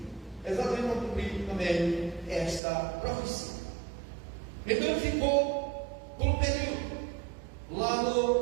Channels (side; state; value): left; drops out; at 2.6 s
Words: Exatamente para cumprir também esta profecia. Então ele ficou por um período lá